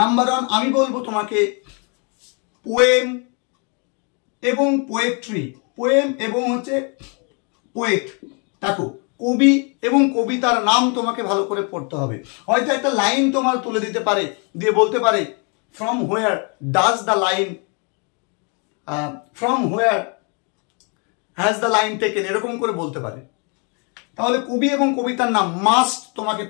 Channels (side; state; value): right; quieter; 35.9 dB